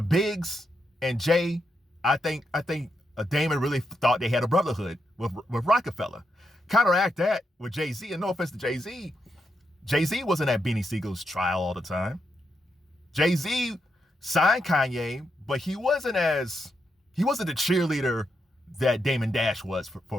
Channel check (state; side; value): normal; both; correlation 0.83